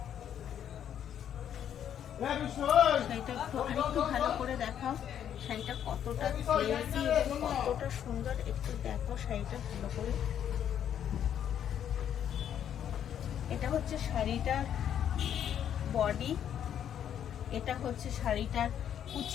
শাড়িটা একটু ভালো করে দেখাও, শাড়িটা কতটা গ্লেজি এবং কতটা সুন্দর, একটু দেখো শাড়িটা ভালো করে। এটা হচ্ছে শাড়িটার বডি, এটা হচ্ছে শাড়িটার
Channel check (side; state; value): right; quieter; 9.5 dB